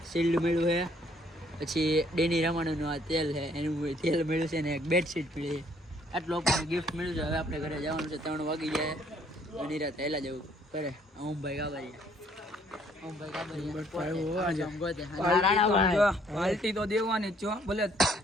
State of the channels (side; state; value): both; normal; correlation 0.64